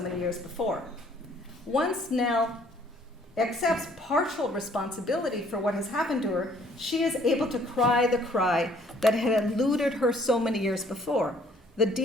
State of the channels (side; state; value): both; normal; correlation 0.61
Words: years before. Once Nell accepts partial responsibility for what has happened to her, she is able to cry the cry that had eluded her so many years before, the